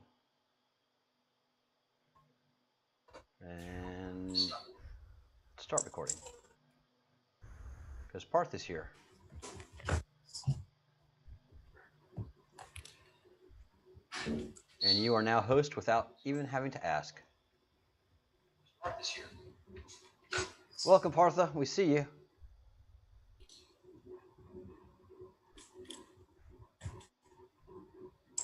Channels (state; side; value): identical; both; correlation 1.00